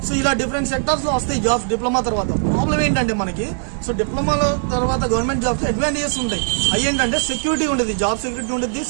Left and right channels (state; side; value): silent; left; digital silence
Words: సో ఇలా డిఫరెంట్ సెక్టార్స్లో వస్తాయి జాబ్స్ డిప్లొమా తర్వాత. ప్రాబ్లం ఏంటంటే మనకి సో డిప్లొమాలో తర్వాత గవర్నమెంట్ జాబ్స్ అడ్వాంటేజెస్ ఉంటాయి. అవి ఏంటంటే సెక్యూరిటీ ఉంటుంది, జాబ్ సెక్యూరిటీ ఉంటుంది,